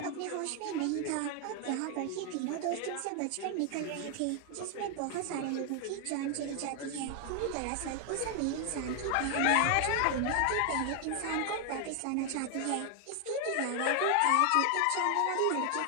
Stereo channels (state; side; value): different; both; correlation 0.00